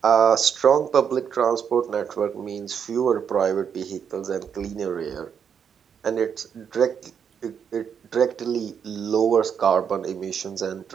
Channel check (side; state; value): left; quieter; 7.5 dB